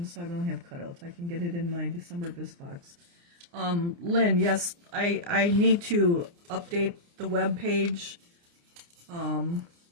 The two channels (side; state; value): left; late; 29 ms